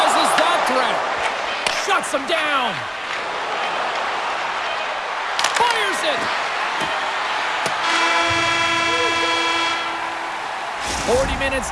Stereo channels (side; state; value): both; identical; correlation 1.00